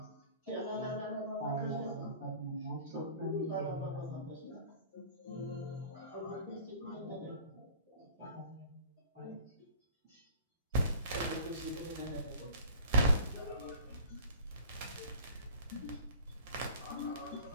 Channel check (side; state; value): both; inverted; correlation -0.44